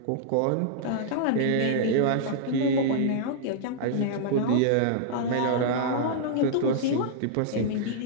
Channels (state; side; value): different; both; correlation -0.02